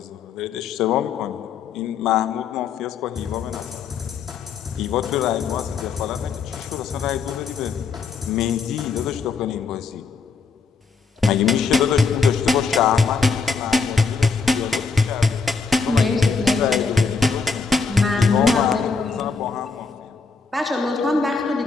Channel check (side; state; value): right; quieter; 4.9 dB